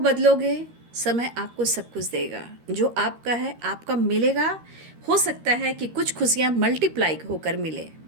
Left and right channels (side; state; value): left; late; 13 ms